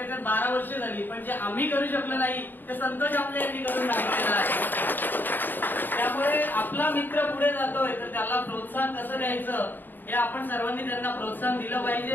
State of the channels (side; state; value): right; late; 0.092 ms